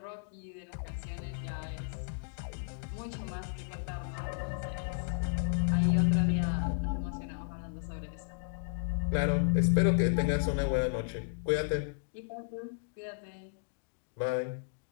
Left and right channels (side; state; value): right; silent; digital silence